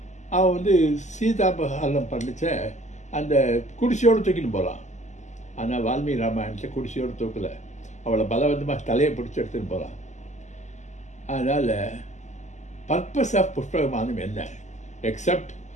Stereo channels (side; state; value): right; late; 0.34 ms